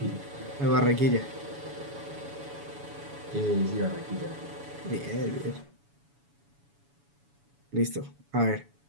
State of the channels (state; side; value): late; left; 7.1 ms